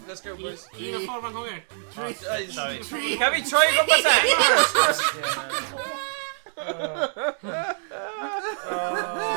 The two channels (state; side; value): silent; left; digital silence